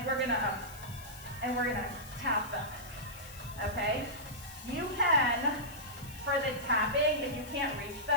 we're going to tap them. Okay? You can, for the tapping, if you can't reach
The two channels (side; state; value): left; noise; hiss, 17 dB below the sound